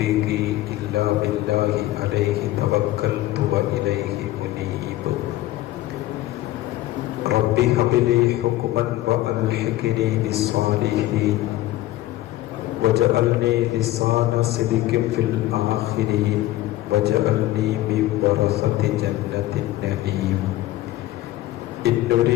ഇല്ലാ ബില്ലാഹി അലൈഹി തവക്കൽതു വഇലൈഹി മുനീബ്. റബ്ബി ഹബ്ലി ഹുക്മൻ വഅൽഹിഖ്നി ബിസ്സാലിഹീൻ വജഅൽനി ലിസാന സിദ്ഖിൻ ഫിൽ ആഖിരീൻ വജഅൽനി മിൻ വറസതി ജന്നത്തിൻ നഈം. ഇൻ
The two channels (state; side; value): quieter; right; 15.7 dB